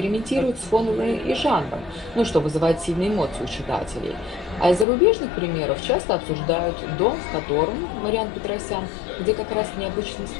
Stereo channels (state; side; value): drops out; right; at 4.9 s